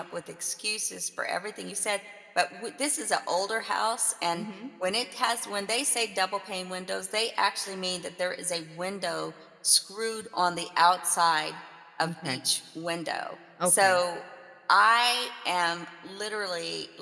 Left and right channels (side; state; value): both; identical; correlation 1.00